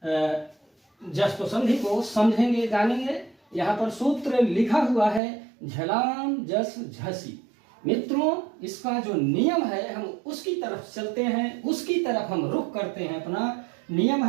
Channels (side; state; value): left; drops out; at 5.2 s